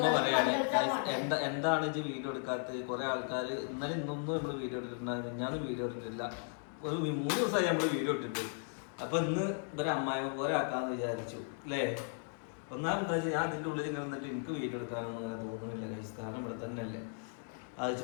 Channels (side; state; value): right; silent; 54 dB below the other